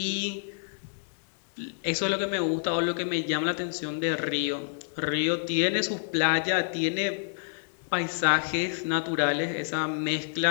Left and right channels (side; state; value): right; silent; digital silence